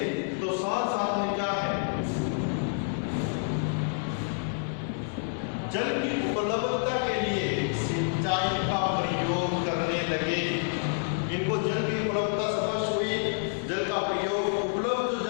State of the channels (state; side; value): silent; right; digital silence